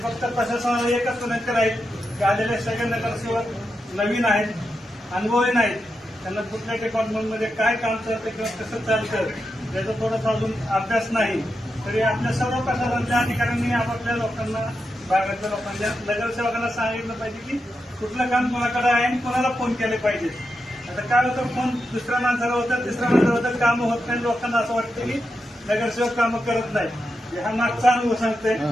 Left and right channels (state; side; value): normal; both; correlation 0.87